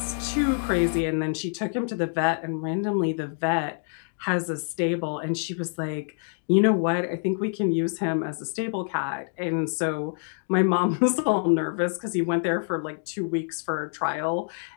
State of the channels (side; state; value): right; silent; 61 dB below the other